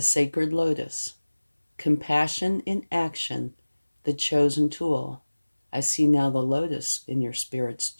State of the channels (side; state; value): both; inverted; correlation -1.00